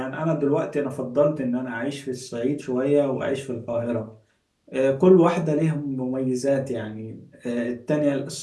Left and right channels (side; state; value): both; identical; correlation 1.00